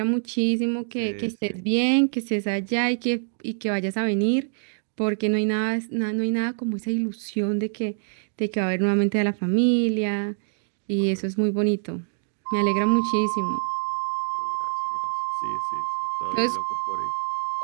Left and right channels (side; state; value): left; silent; digital silence